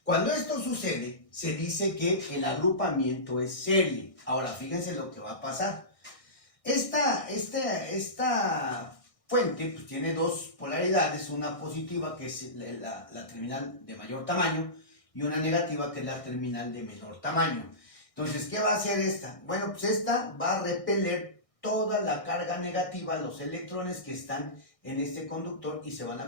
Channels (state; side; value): late; right; 1.6 ms